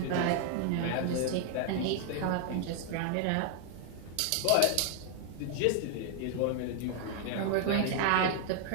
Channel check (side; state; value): both; different; correlation 0.00